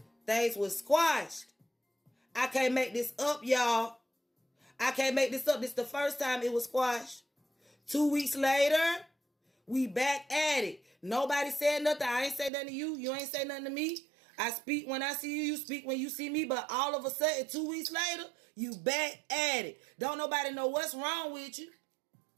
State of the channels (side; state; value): left; drops out; at 12.5 s